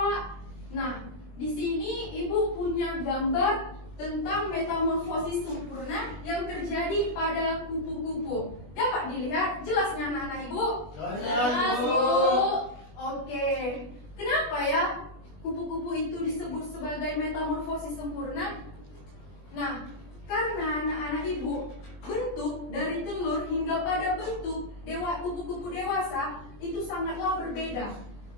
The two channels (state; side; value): late; right; 20 ms